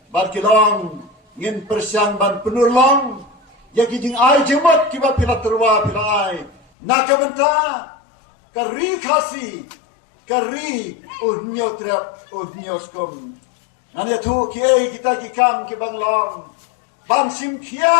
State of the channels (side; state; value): right; drops out; at 6.6 s